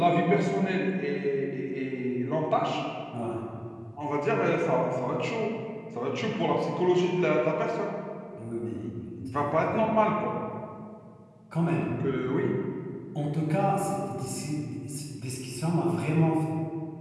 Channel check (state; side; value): identical; both; correlation 1.00